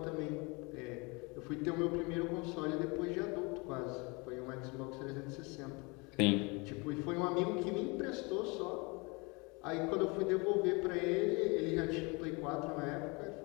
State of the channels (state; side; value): quieter; right; 28.3 dB